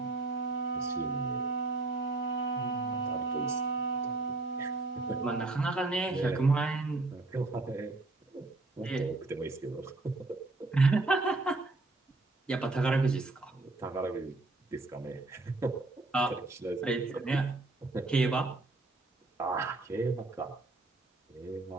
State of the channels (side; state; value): left; quieter; 3.2 dB